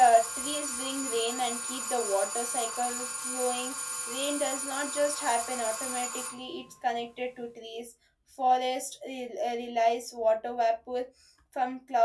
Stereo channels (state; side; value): identical; both; correlation 1.00